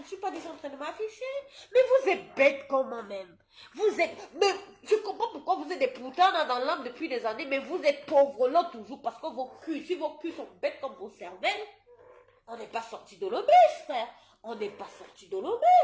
suis pas déjà en train de m'afficher. Mais vous êtes bête comment même? Vous êtes... Mais je comprends pourquoi vous êtes des putains dans l'âme depuis des années, mais vous êtes pauvres là toujours parce que vos culs, si vos culs sont bêtes comme vos cervelles, on n'est pas sorti de l'auberge, frère. On n'est pas sorti de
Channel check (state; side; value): identical; both; correlation 1.00